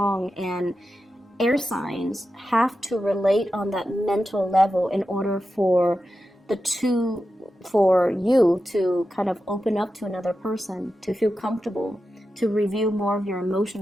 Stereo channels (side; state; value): both; normal; correlation 0.91